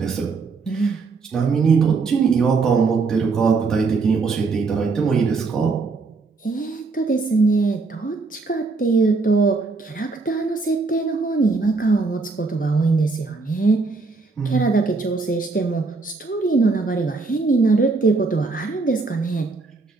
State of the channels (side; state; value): left; quieter; 4.2 dB